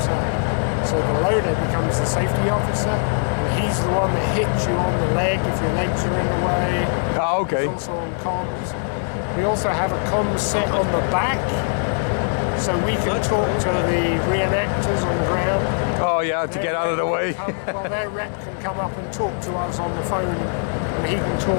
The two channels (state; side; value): silent; right; 63 dB below the other